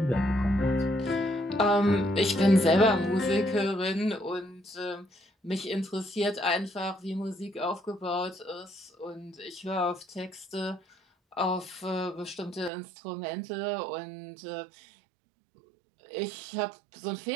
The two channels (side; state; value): left; drops out; at 12.7 s